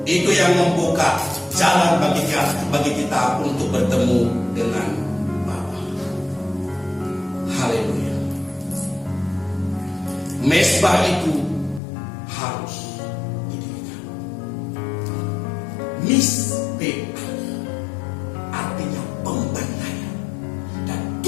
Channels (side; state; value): right; drops out; at 11.8 s